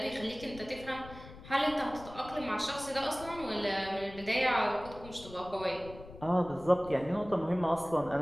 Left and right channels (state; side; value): noise; left; rumble, 16 dB below the sound